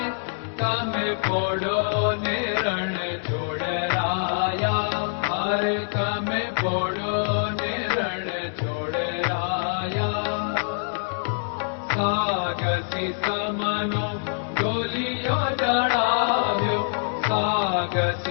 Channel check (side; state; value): right; silent; digital silence